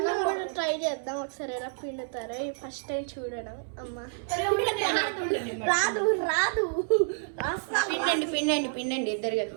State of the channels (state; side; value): silent; left; 58 dB below the other